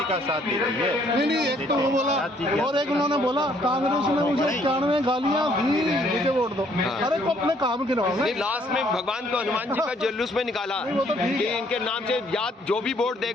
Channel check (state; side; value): normal; both; correlation 0.65